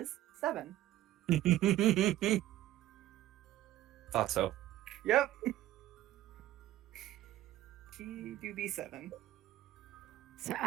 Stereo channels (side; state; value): left; quieter; 14.2 dB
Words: 7. Thought so. Yep. She do be 7. So